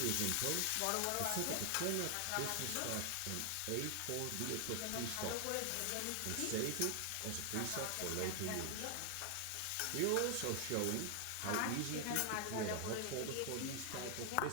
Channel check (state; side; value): different; both; correlation 0.00